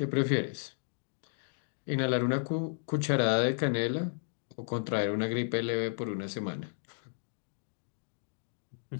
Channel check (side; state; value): right; silent; digital silence